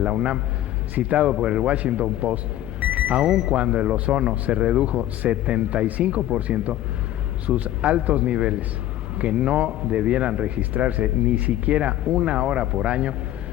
UNAM, citado por el Washington Post, aun cuando el ozono se redujo 75%, sus altos niveles, que no debieran registrarse ni siquiera 1 hora por año,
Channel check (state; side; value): quieter; right; 13.4 dB